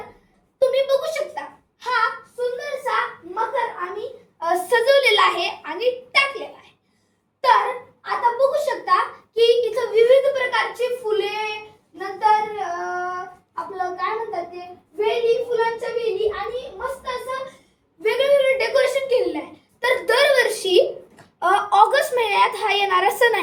तुम्ही बघू शकता हा सुंदरसा मकर आम्ही सजवलेला आहे आणि टाकलेला आहे. तर आता बघू शकता की इथं विविध प्रकारची फुले, नंतर आपलं काय म्हणतात ते वेली, फुलांच्या वेली आणि मस्त असं वेगवेगळं डेकोरेशन केलेलं आहे. तर दरवर्षी ऑगस्ट महिन्यात हा येणारा सण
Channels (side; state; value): both; identical; correlation 1.00